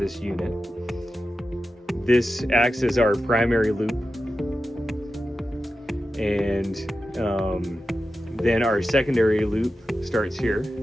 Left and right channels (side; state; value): both; normal; correlation 0.91